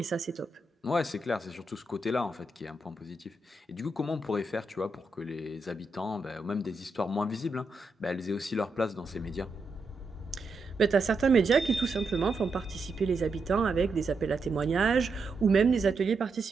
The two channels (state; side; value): quieter; left; 3.1 dB